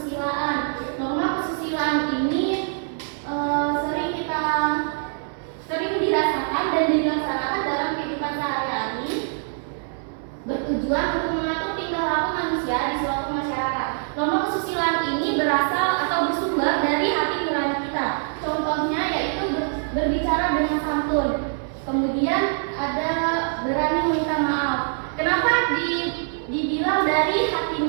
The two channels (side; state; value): left; silent; 62 dB below the other